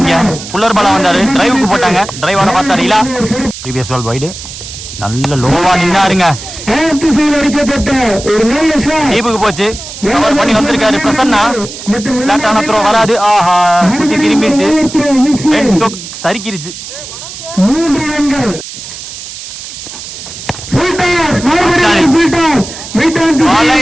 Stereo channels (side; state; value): right; noise; hiss, 11 dB below the sound